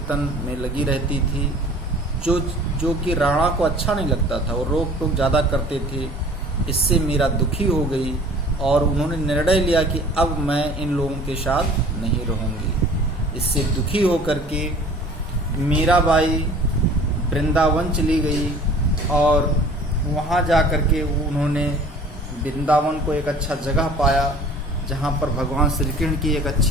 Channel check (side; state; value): both; normal; correlation 0.48